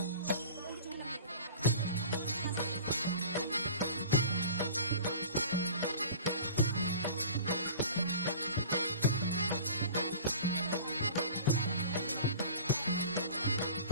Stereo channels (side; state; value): both; inverted; correlation -0.41